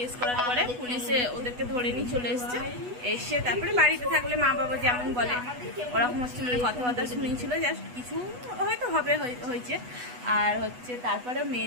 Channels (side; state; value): left; late; 8.1 ms